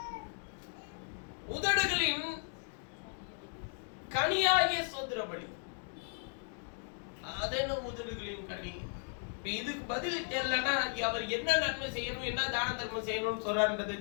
உதடுகளின் கனியாகிய சோத்திர பலி, அது என்ன உதடுகளின் கனி? இதுக்கு பதில் தெரியலன்னா அவர் என்ன நன்மை செய்யணும், என்ன தான தர்மம் செய்யணும்னு சொல்றாருன்றதே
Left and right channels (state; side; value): silent; right; 54 dB below the other